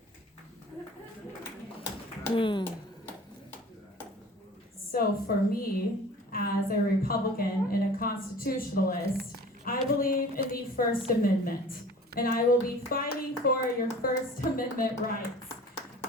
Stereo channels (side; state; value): both; normal; correlation 0.44